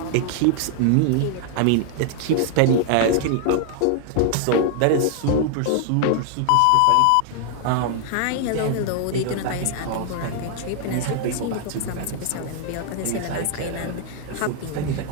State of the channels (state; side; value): different; both; correlation 0.00